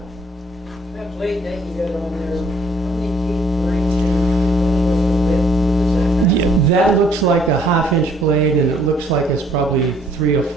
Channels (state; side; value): normal; both; correlation 0.62